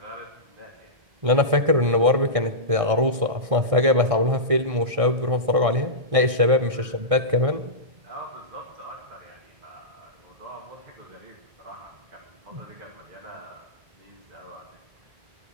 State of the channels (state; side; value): late; left; 1.6 ms